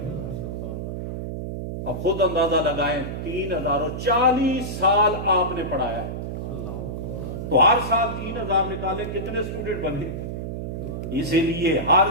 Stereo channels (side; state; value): right; noise; hum, 5 dB below the sound